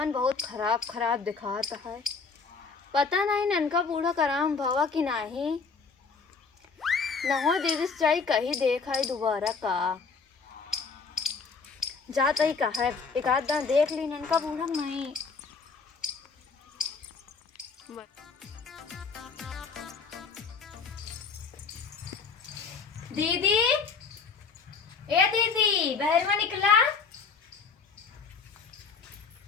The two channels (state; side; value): quieter; right; 5.0 dB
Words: बहुत खराब खराब दिखाता है। पता नहीं ननका बूढ़ा कराम भवा कि नहीं। नहो दीदी चाई कहीं देखा है दोबारा का जाता ही कहा है। एक आध दान देख ली ननका बूढ़ा नहीं। दीदी ए दीदी बाहर में निकला।